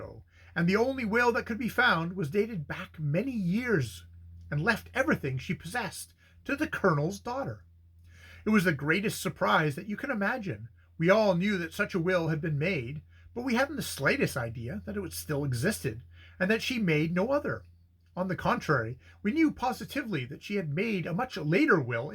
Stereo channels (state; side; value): identical; both; correlation 1.00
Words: and the only will that could be found was dated back many years, and left everything she possessed to the Colonel's daughter. It was the greatest surprise that you can imagine. We all knew that such a will had been made, but we hadn't the slightest idea that it still existed, and that she made no other. On the contrary, we knew positively that she had made a much later will